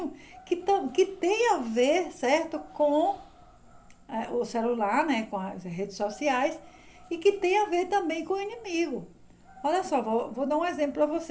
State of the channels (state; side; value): identical; both; correlation 1.00